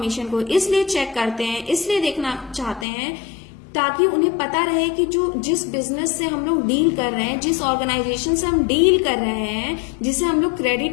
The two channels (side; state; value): right; drops out; at 2.9 s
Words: को इसलिए चेक करते हैं, इसलिए देखना चाहते हैं ताकि उन्हें पता रहे कि जिस बिजनेस से हम लोग डील कर रहे हैं, जिस ऑर्गेनाइजेशन से हम डील कर रहे हैं, जिसे हम लोग